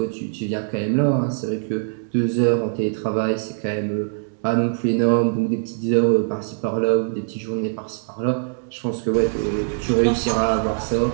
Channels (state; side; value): silent; left; 64 dB below the other